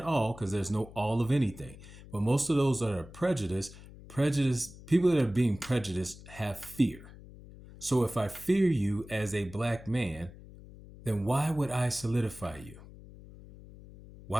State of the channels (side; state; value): left; noise; hum, 18 dB below the sound